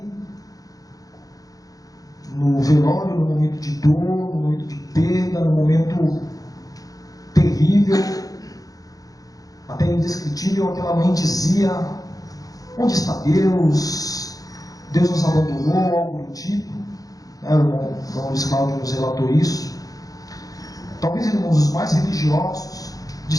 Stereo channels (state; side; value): late; right; 0.17 ms